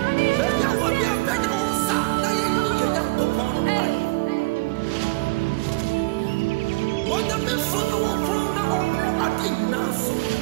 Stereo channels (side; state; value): left; quieter; 24.6 dB